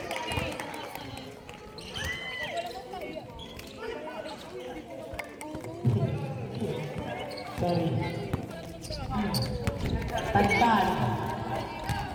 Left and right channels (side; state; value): both; identical; correlation 1.00